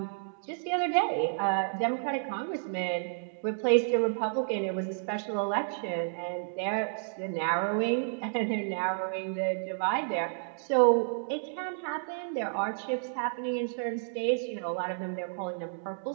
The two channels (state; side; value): silent; left; digital silence